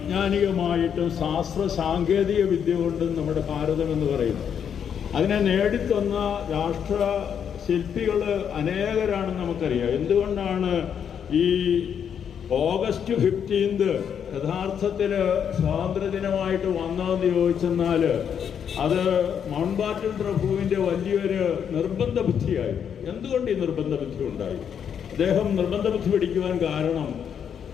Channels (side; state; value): right; quieter; 8.0 dB